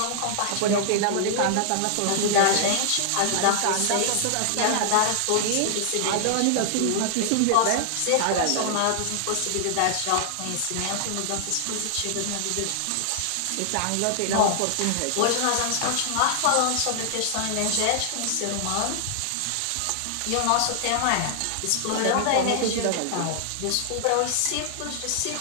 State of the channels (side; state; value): both; different; correlation 0.00